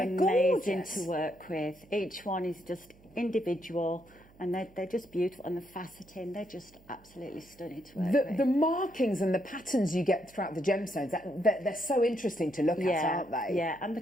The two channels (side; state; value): right; noise; hum, 26 dB below the sound